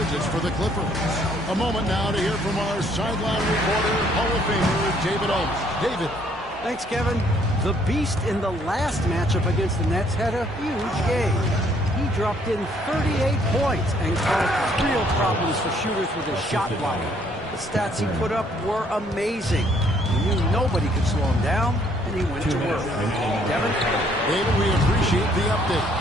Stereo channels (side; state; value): both; normal; correlation 0.65